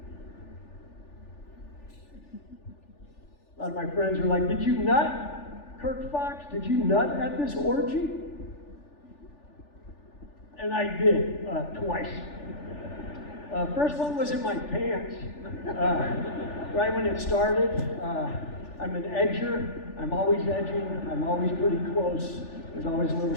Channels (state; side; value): late; right; 3.4 ms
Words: A lot of my friends are like, did you nut, Kirk Fox? Did you nut at this orgy? And I did, twice. First one was in my pants, right when it started. I'm an edger. I'm always edging. I'm always pretty close. There's always a little